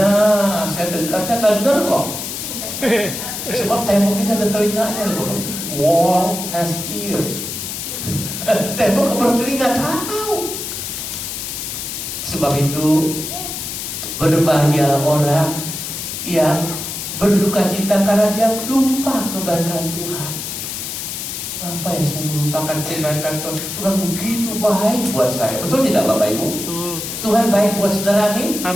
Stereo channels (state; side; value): noise; left; hiss, 6 dB below the sound